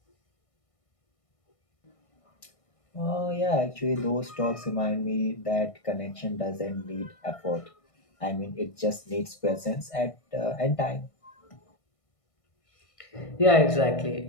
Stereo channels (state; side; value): late; right; 1.6 ms